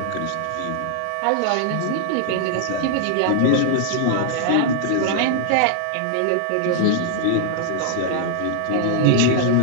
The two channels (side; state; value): both; different; correlation -0.01